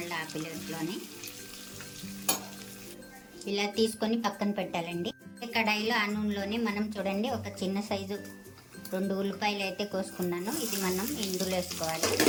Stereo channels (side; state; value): both; identical; correlation 1.00